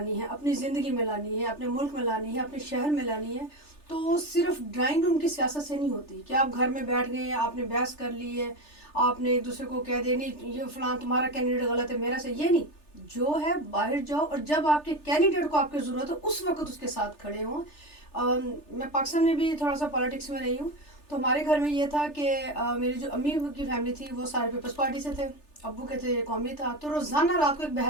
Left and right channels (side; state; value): right; late; 3.3 ms